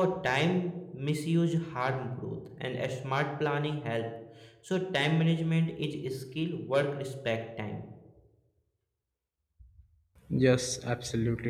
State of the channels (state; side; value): identical; both; correlation 1.00